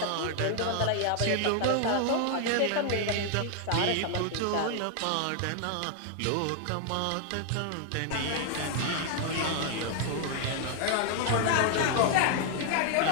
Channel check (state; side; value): different; both; correlation 0.00